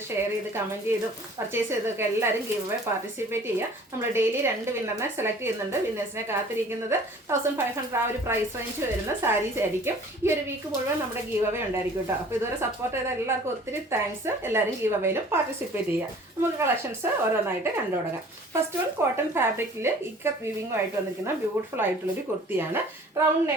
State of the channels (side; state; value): both; normal; correlation 0.49